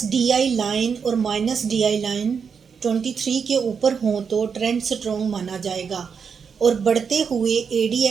DI लाइन और माइनस DI लाइन 23 के ऊपर हों तो ट्रेंड स्ट्रॉन्ग माना जाएगा और बढ़ते हुए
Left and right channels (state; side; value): quieter; left; 6.3 dB